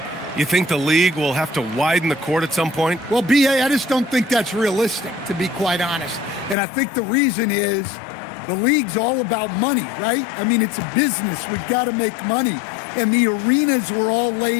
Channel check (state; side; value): drops out; right; at 6.6 s